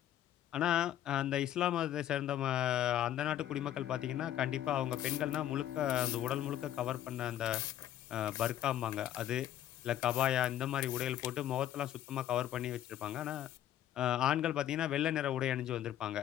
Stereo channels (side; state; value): right; quieter; 11.8 dB